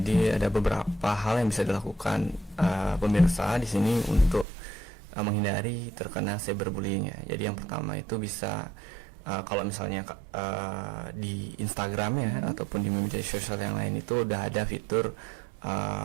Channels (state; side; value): drops out; left; at 4.5 s